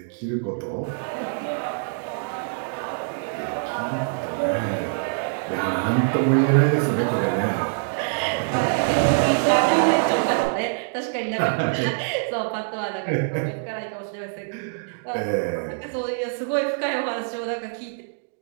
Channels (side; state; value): left; silent; digital silence